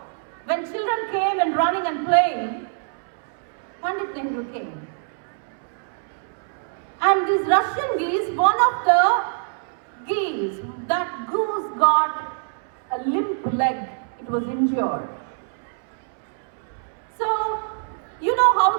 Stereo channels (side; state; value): left; silent; 62 dB below the other